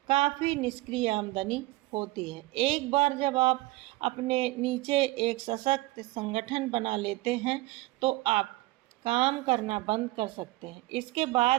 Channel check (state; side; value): quieter; left; 19.5 dB